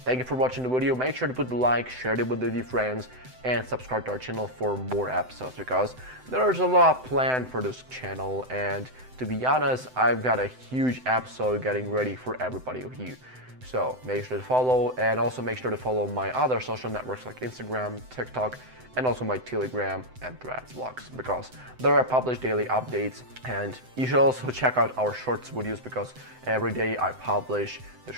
you for watching the video. Make sure to put the like, share it with your friends, and subscribe to our channel for more episodes, because there's a lot planned for this channel, and to be honest, I've got a huge episode getting ready for everybody of you. So make sure to follow, and also make sure to follow my other social networks like Instagram, TikTok, and also my Telegram and Threads vlogs, because there are published daily updates. And you should also check out our shorts videos, because every day I publish the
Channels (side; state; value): left; late; 7.9 ms